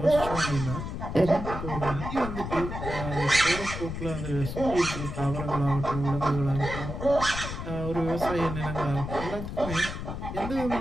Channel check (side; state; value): left; noise; rumble, 6 dB below the sound